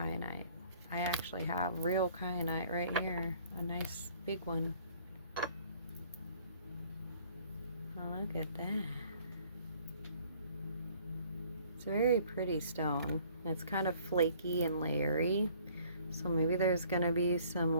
I actually have real kyanite right here, a nice big one. Oh, look at that. It's a very pretty stone. It's kind of flaky and layery, so maybe there's going to be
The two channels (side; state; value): both; inverted; correlation -0.56